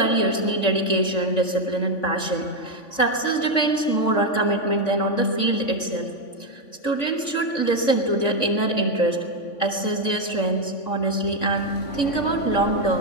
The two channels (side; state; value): right; late; 3.5 ms